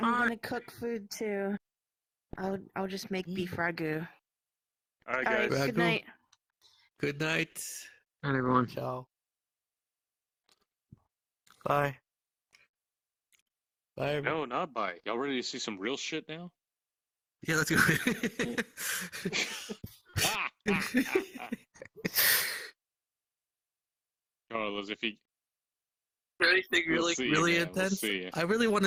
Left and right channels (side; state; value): both; identical; correlation 1.00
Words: Bye. gonna cook food too. I'll just make beef ragu. All right, Alright, guys. good night. Good night. All right, everyone. Ciao. Bye. Bye. Everyone. No, not bye. Y'all ready to see some real shit now? Yeah, let's go. Carlos, if you Anything We'll really, see you, really man. We'll intense? see you. I really want